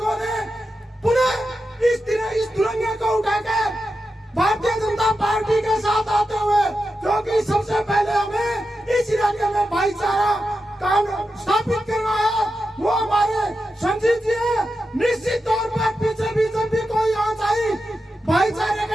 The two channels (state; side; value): normal; both; correlation 0.89